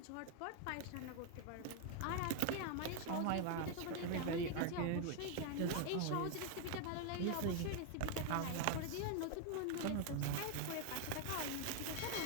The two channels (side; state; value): both; different; correlation 0.00